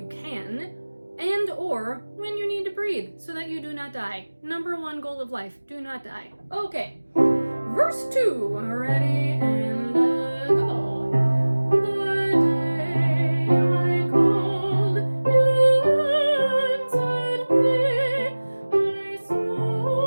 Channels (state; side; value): inverted; both; correlation -1.00